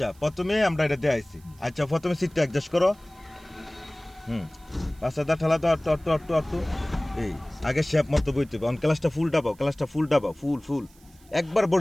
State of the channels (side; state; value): right; noise; hiss, 28 dB below the sound